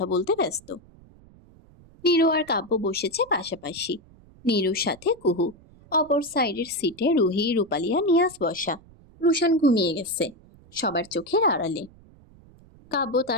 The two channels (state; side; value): noise; right; rumble, 25 dB below the sound